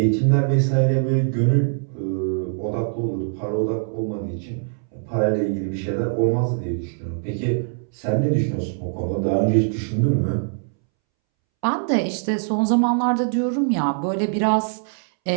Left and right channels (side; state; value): left; silent; 64 dB below the other